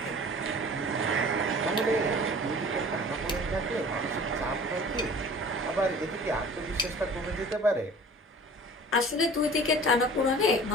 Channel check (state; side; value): normal; both; correlation 0.44